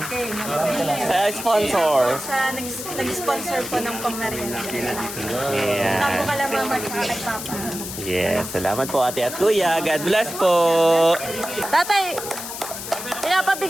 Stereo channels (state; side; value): noise; left; hiss, 8 dB below the sound